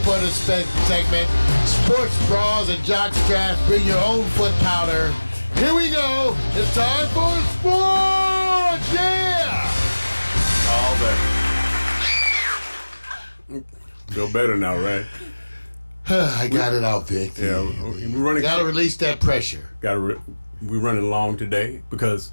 this segment. Sports bras and jock straps. Bring your own foot powder. Here we go. It's time for sports. Yeah. All that. Feel better now, right? I got it out, Vic. Yeah, we're running. Gotta release that pressure. We're running long today because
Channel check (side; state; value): both; inverted; correlation -1.00